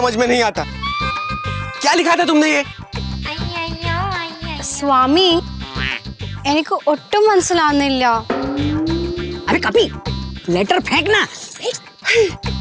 में नहीं आता। क्या लिखा था तुमने ये? സ്വാമി എനിക്ക് ഒട്ടും മനസ്സിലാവുന്നില്ല. अरे कपी लेटर फेंकना।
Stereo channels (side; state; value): both; identical; correlation 1.00